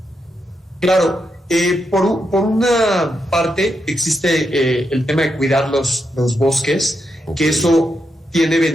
Claro, por una parte existe el tema de cuidar los bosques, que eso tiene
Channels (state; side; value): normal; both; correlation 0.83